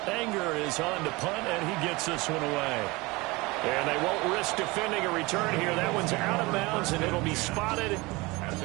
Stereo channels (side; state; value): left; quieter; 23.4 dB